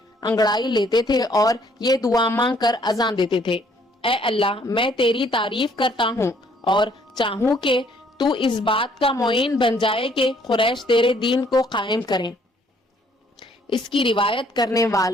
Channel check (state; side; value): normal; both; correlation 0.64